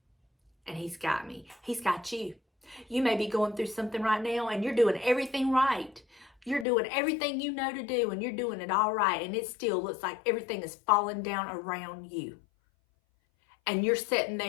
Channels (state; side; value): drops out; right; at 6.7 s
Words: And he's got me. He's got you. You may be going through something right now and you're doing everything right. You're doing everything you know to do and you're doing it all right. And it still looks like everything is falling down around you. And you're sitting